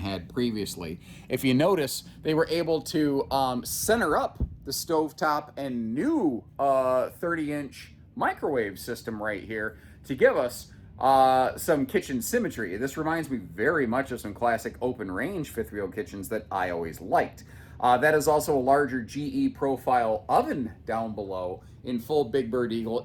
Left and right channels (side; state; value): both; identical; correlation 1.00